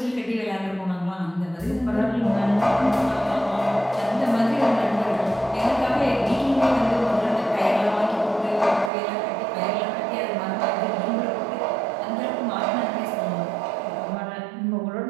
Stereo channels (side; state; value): left; drops out; at 8.9 s